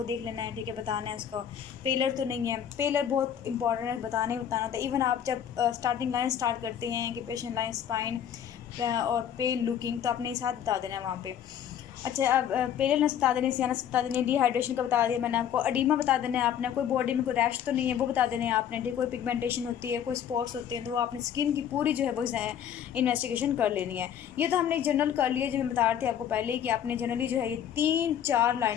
देख लेना है, ठीक है, बताना है उसको। पेलर तो नहीं है, पेलर बहुत इंपॉर्टेंट है, बताना होता है। इवन आप जब स्टार्टिंग लाइन स्टार्ट करते हैं कि पेशेंट लाइन स्पाइन और पेल लुकिंग, तो आपने ये साथ बता देना है वहाँ पे। अच्छा, अब पेलनेस बता देने, सियानस बता देने, डिहाइड्रेशन का बता दिया मैंने आपको, अडीमा बता देना है आपने, कोई बॉडी में कोई रैश तो नहीं है वो बता देने हैं आपने, ठीक। कोई पिगमेंटेशन होती है, कोई स्पॉट्स होते हैं, तो वो आपने स्किन की पूरी जो है वो इन्वेस्टिगेशन कर लेनी है। ये तो हमने एक जनरल कर लिया, जो मैं बता रही थी आपको पहले ही, कि आपने जनरली जो है ये 3-4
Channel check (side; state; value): right; quieter; 9.4 dB